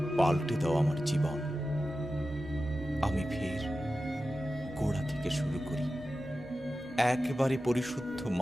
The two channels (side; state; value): both; normal; correlation 0.93